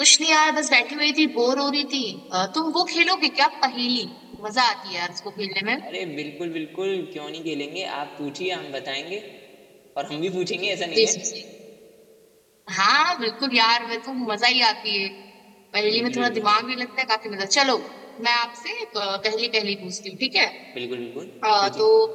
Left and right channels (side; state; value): both; identical; correlation 1.00